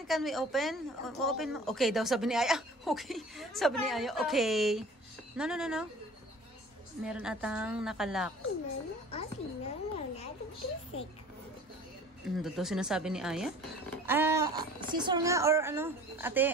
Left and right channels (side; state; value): both; normal; correlation 0.46